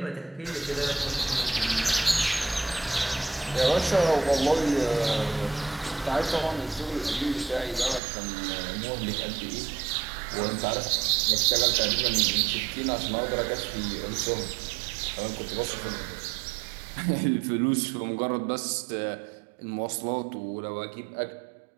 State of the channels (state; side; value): drops out; left; at 8.0 s